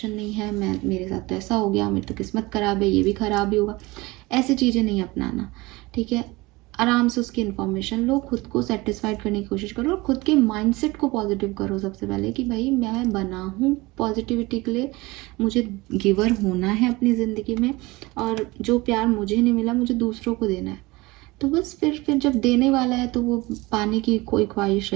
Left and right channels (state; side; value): quieter; left; 22.1 dB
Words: नहीं है, मेरे साथ तो ऐसा हो गया, मेरी तो किस्मत खराब है, ये भी खराब ही होगा, ऐसी चीज़ें नहीं अपनाना, ठीक है? आराम से उसकी इन्फॉर्मेशन लो, खुद को सेटिस्फाइड करने की कोशिश करो और खुद के माइंडसेट को पॉजिटिव करो सबसे पहले कि भाई मैं बना हूँ पॉजिटिविटी के लिए, मुझे गिवर होना है अपनी ज़िंदगी में और जो प्यार मुझे नहीं मिला मुझे दूसरों को देना है। तो बस फिर जब देने वाला है तो वो पाने की कोई ख्वाहिश